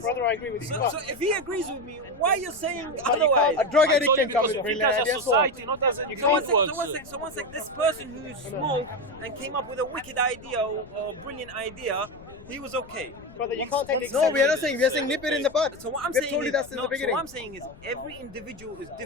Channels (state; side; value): noise; left; rumble, 21 dB below the sound